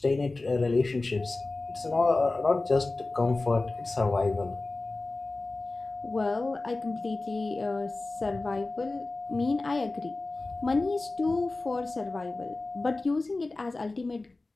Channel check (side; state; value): right; quieter; 3.2 dB